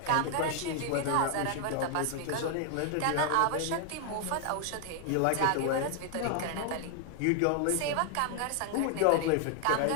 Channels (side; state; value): both; different; correlation 0.00